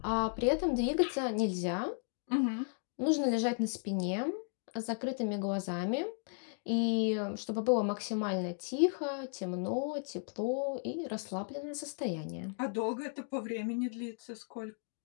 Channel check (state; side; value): silent; right; 54 dB below the other